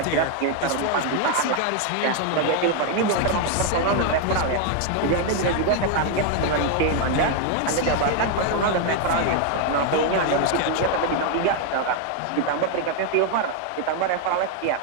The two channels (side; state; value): both; different; correlation 0.01